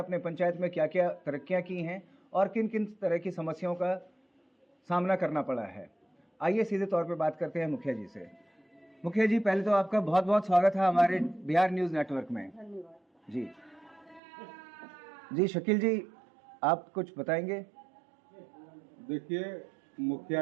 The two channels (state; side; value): drops out; left; at 14.2 s